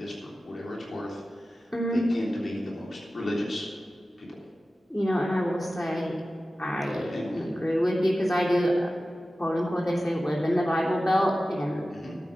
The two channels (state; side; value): normal; both; correlation 0.95